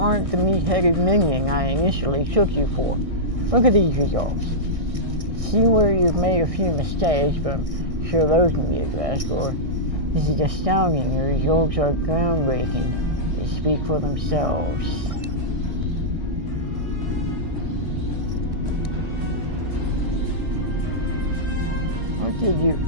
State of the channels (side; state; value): left; late; 1.6 ms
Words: the meat-headed minion I initially took you for. Look at these results. See where you've made a few mistakes, but I'm sure those can be addressed, or this is astounding. Your results are groundbreaking. They speak for themselves. What did you...